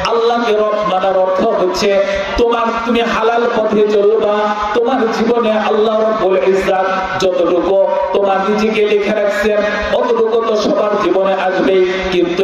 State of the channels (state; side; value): identical; both; correlation 1.00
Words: আল্লাহকে রব মানার অর্থ হচ্ছে তুমি হালাল পথে চলবা। তোমার জীবনে আল্লাহ রাব্বুল ইজ্জত যতটুকু তোমার নিজেকে লিখে রাখছেন, অতটুকু তো সবার জীবনে আসবে। কিন্তু